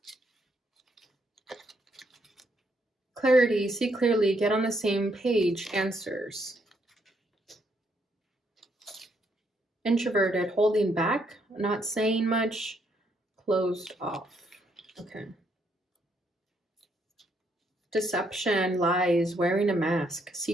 Clarity, see clearly, get on the same page, answers. Introverted, holding back, not saying much, closed off. Okay. Deception, lies, wearing a mask,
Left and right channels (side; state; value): both; normal; correlation 0.73